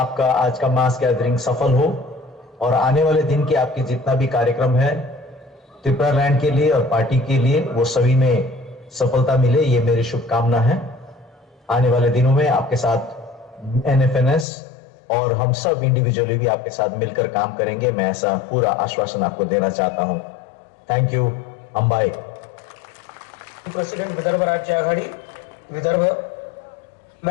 आज का मास गैदरिंग सफल हो और आने वाले दिन के आपके जितना भी कार्यक्रम है त्रिपुरा लैंड के लिए और पार्टी के लिए वो सभी में सफलता मिले, ये मेरी शुभकामना है। आने वाले दिनों में आपके साथ एनएफएनएस और हम सब इंडिविजुअली भी आपके साथ मिलकर काम करेंगे। मैं ऐसा पूरा आश्वासन आपको देना चाहता हूं। Thank you. Ambai president Vidarbha राज्य आघाड़ी विदर्भ।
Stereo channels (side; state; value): right; drops out; at 14.5 s